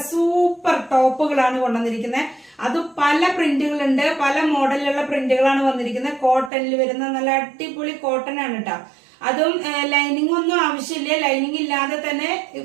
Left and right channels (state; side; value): drops out; left; at 6.5 s